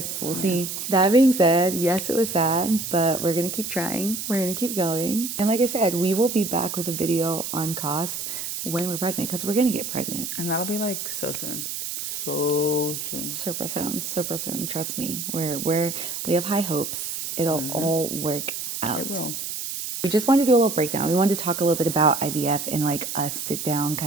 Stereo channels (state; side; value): noise; right; hiss, 5 dB below the sound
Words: we'll see. That being said, yes, it was sad, but we're gonna keep trying. We're gonna keep going. And like I said, we will be back with a video on cost when we're pregnant, because we're gonna get pregnant. And that'll be like so soon. So soon. Super soon. Trust me. We have high hopes. It'll all work out. It will. We just wanted to do a little breakdown. We wanted to talk a little bit about IVF in like a sit down,